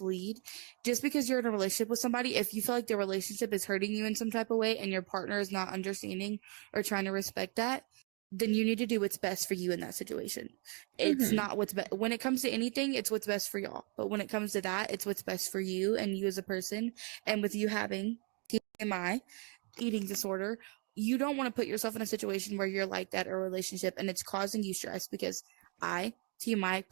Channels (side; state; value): left; quieter; 35.2 dB